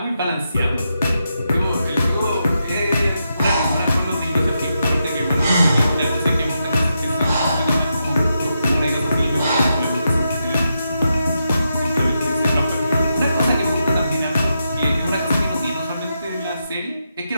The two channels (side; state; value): both; inverted; correlation -0.85